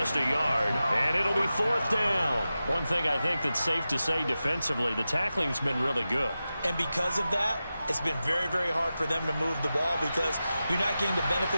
a yard, and it'll be 4th down. One thing I think that's safe to say defensively, the tackling's been really good. And because of that, it's been very, very hard for them to move the ball because you're not getting the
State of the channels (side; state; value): both; inverted; correlation -0.93